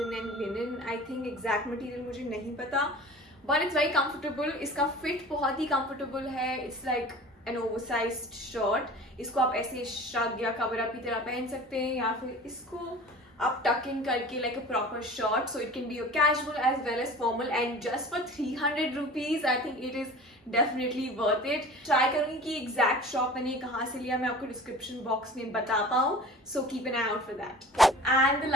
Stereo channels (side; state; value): both; normal; correlation 0.41